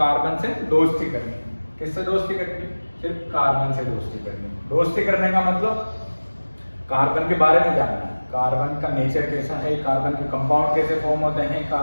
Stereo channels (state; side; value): inverted; both; correlation -1.00